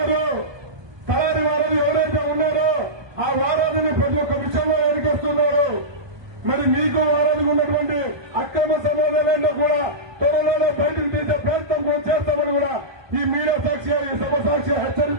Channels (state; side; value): late; left; 1.2 ms